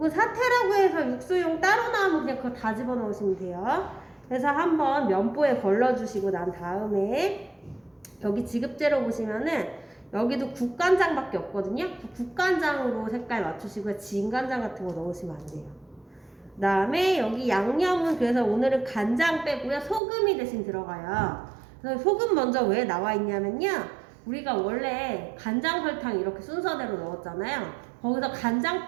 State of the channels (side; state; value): left; drops out; at 20.0 s